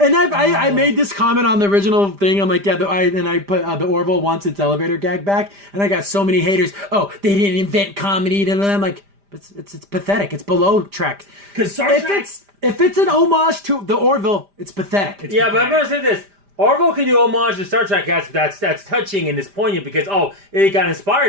I made this comment on the original thing. I'm like, yeah, and I put the Orville wants its elevator gag back, and I got so many haters. Oh, they didn't invent comedy, and I'm like, it's pathetic. It's below Trek. Because Star Trek. If it's an homage to the Orville, it's pathetic. Yeah, but I'm going to say this. Orville can do homage to Star Trek. That's touching and it's poignant because, it got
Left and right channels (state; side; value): late; left; 5.0 ms